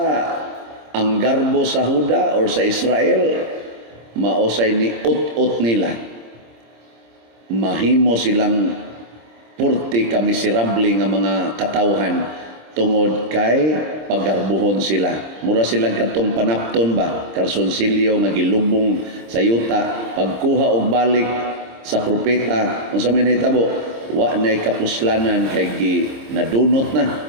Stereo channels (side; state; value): left; late; 26 ms